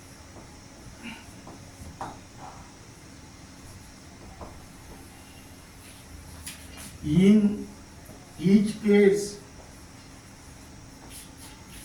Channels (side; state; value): both; identical; correlation 1.00